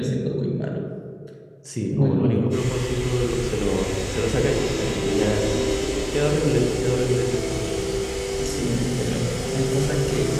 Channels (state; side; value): identical; both; correlation 1.00